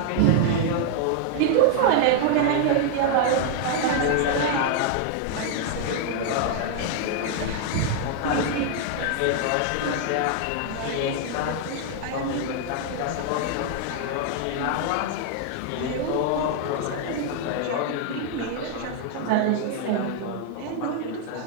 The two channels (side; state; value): both; different; correlation 0.00